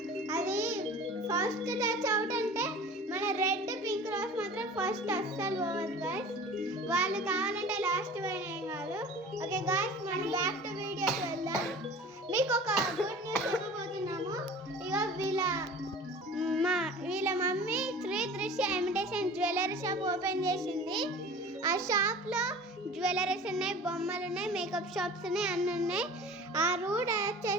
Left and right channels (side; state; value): both; normal; correlation 0.41